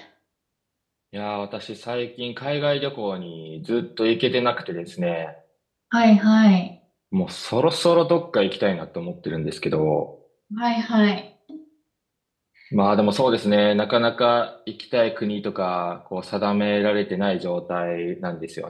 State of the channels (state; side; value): identical; both; correlation 1.00